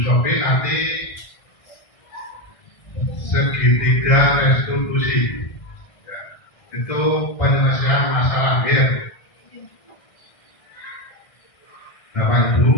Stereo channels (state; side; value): late; right; 1.6 ms